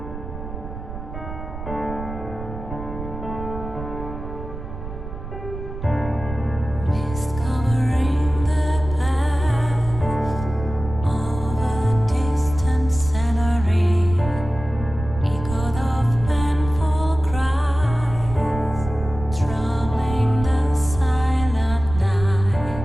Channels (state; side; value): noise; right; rumble, 10 dB below the sound